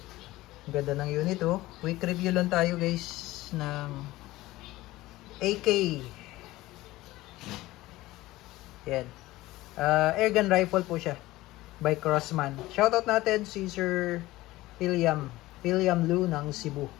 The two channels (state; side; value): quieter; right; 17.9 dB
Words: Ang ganda ng unit oh. Quick review lang tayo guys ng AK. Yan. Airgun rifle po siya by Crossman. Shoutout natin si Sir William Lu ng Cebu.